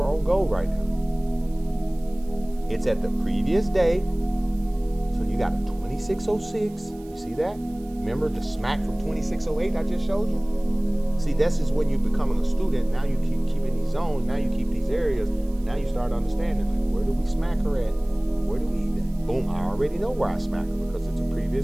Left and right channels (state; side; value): noise; right; hiss, 27 dB below the sound